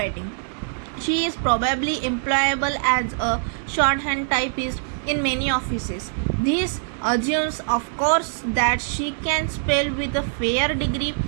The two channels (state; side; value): silent; left; 63 dB below the other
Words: she is probably employable as a shorthand typist in many offices. This assumes, of course, that she can spell with a fair degree